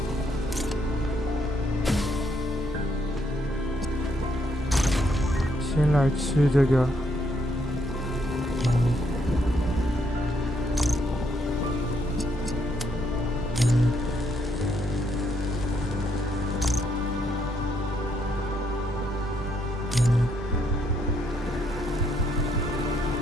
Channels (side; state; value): both; normal; correlation 0.74